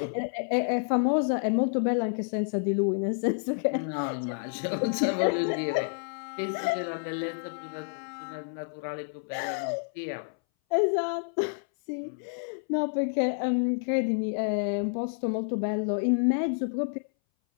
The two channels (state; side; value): silent; right; 58 dB below the other